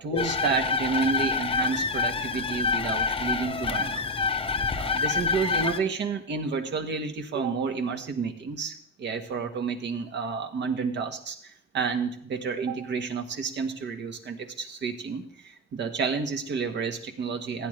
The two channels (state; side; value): normal; both; correlation 0.09